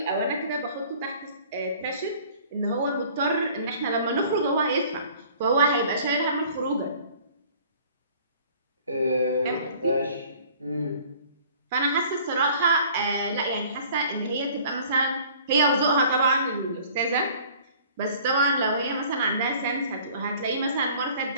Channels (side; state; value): both; inverted; correlation -0.51